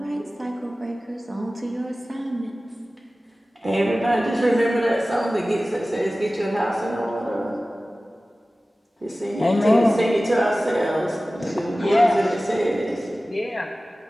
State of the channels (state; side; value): normal; both; correlation 0.97